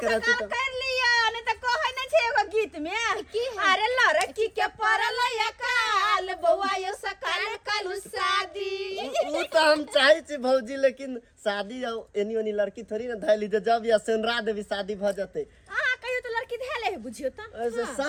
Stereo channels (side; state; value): both; identical; correlation 1.00